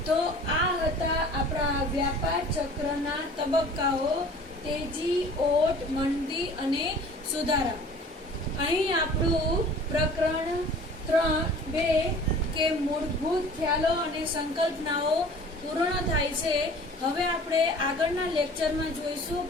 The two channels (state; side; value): normal; both; correlation 0.46